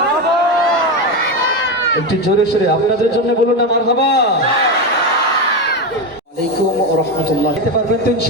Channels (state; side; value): normal; both; correlation 0.14